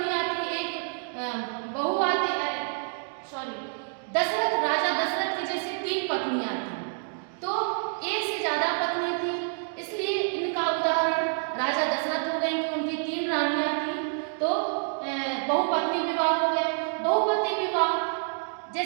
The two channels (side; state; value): left; silent; 59 dB below the other